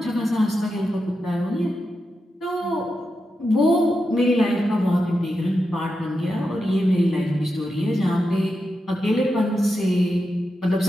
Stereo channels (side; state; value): both; normal; correlation 0.88